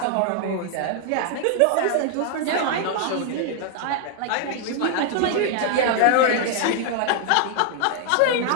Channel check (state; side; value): different; both; correlation 0.00